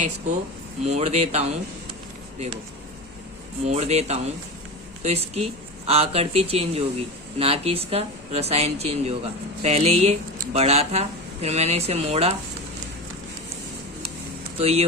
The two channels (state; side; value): normal; both; correlation 0.25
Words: इसको मोड़ देता हूँ, देखो मोड़ देता हूँ, तो इसकी आकृति चेंज होगी, ना कि इसका रसायन चेंज होगा। पहले ये बड़ा था, फिर मैंने इसे मोड़ा तो ये